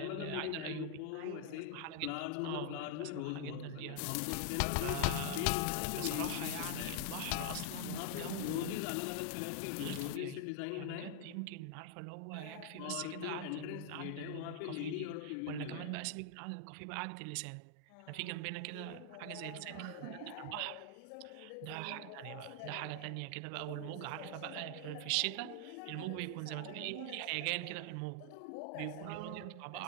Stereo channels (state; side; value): different; both; correlation 0.00